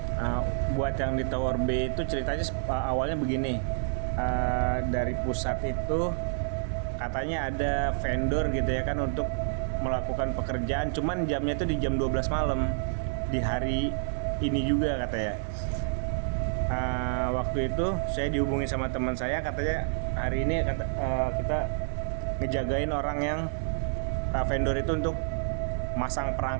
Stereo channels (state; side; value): silent; left; 57 dB below the other